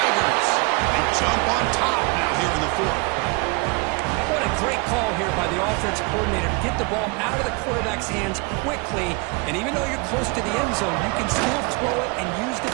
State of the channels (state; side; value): quieter; left; 29.5 dB